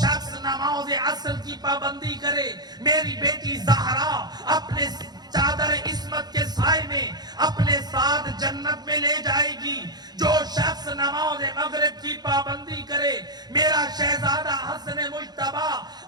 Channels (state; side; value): late; left; 0.20 ms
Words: نماز عصر کی پابندی کرے، میری بیٹی زہرا اپنے چادر عصمت کے سائے میں اپنے ساتھ جنت میں لے جائے گی۔ جو شخص نماز مغرب کی پابندی کرے، میرا شہزادہ حسن مجتبی